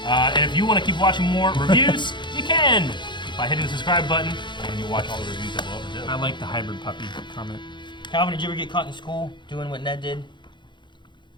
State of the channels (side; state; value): right; late; 0.23 ms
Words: And if you want to keep watching more reviews, you can by hitting the subscribe button, and you watch all the reviews that we'll ever do. I like the hybrid puppy comment. Calvin, did you ever get caught in school doing what Ned did?